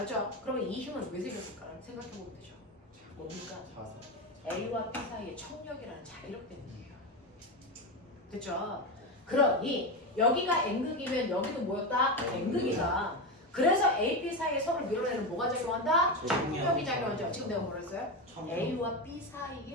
그러면 이 힘은 왜 생겼을까? 생각해보면 되죠. 뭡니까? 자석. A와 B 사이의 청력이라는 자기력 때문이에요. 됐죠? 그러니 여기가 N극이면 여기도 뭐였다? N극이다. 그래서 A, B 사이에 서로 밀어내는 뭐가 작용한다? 청력이 작용하죠. 지금 내가 뭐라 했어요? A와 B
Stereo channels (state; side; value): normal; both; correlation 0.16